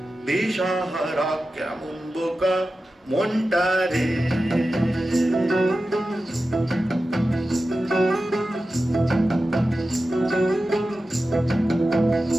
দিশাহারা কেমন বোকা মনটা রে।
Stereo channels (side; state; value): both; normal; correlation 0.93